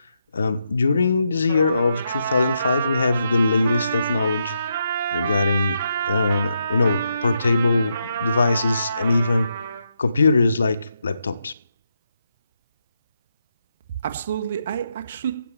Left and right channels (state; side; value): inverted; both; correlation -0.81